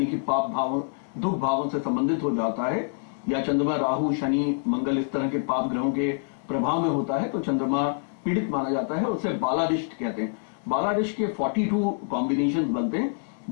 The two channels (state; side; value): silent; right; 61 dB below the other